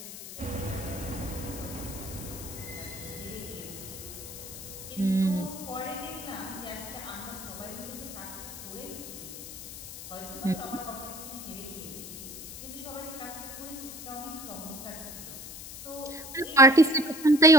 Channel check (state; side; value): noise; left; hiss, 11 dB below the sound